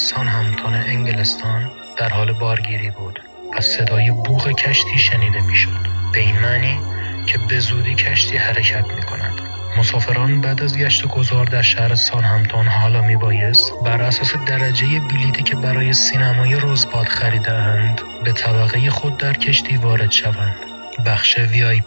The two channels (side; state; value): both; inverted; correlation -1.00